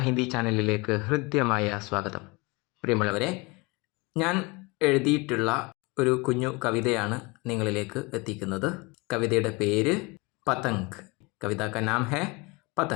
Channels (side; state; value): right; quieter; 25.9 dB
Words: ഹിന്ദി ചാനലിലേക്ക് ഹൃദ്യമായ സ്വാഗതം. പ്രിയമുള്ളവരെ, ഞാൻ എഴുതിയിട്ടുള്ള ഒരു കുഞ്ഞു കവിതയാണ് നിങ്ങളിലേക്ക് എത്തിക്കുന്നത്. കവിതയുടെ പേര് പതംഗ്. കവിത കാ നാം ഹേ